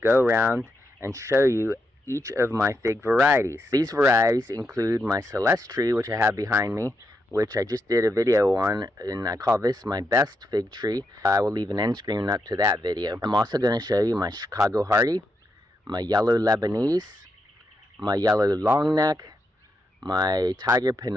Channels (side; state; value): both; normal; correlation 0.83